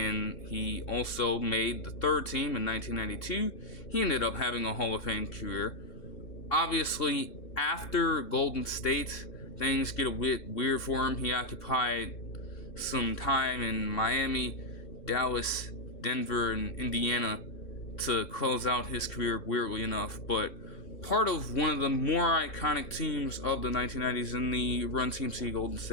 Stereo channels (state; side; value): late; right; 3.6 ms